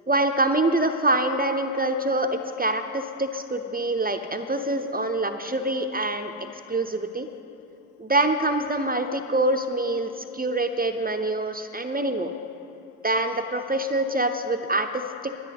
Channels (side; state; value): both; normal; correlation 0.01